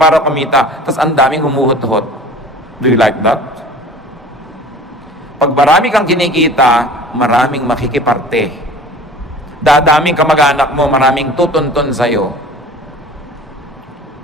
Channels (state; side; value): normal; both; correlation 0.43